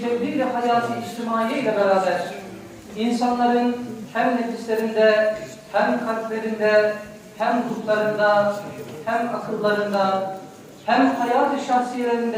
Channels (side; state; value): both; identical; correlation 1.00